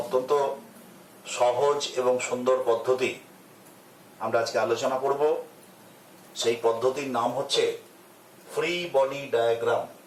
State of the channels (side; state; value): both; identical; correlation 1.00